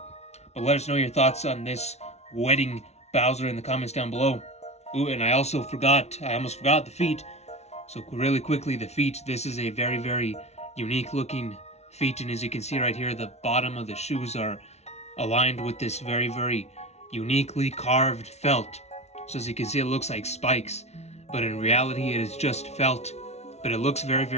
But let us know your thoughts on this wedding Bowser in the comments down below. Ooh, and I almost forgot the feet. So really quickly, the feet, this is a very, very unique looking feet, and as you can see right here, the bottom of the shoes are aligned with this very, very uniquely carved felt. So as you can see, it looks like spikes, but in reality it is just felt. But it looks very,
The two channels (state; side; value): late; right; 0.31 ms